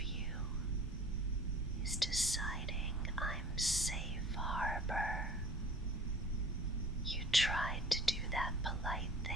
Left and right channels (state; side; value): normal; both; correlation 0.46